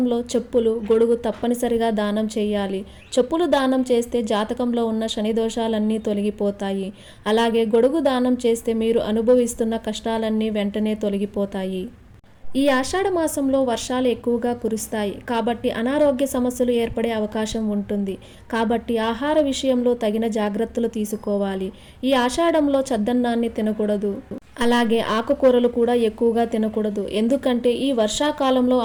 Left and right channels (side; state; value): both; identical; correlation 1.00